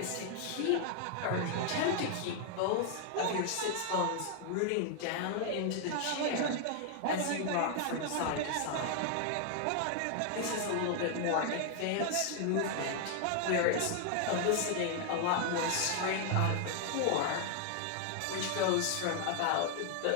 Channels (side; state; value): both; different; correlation 0.00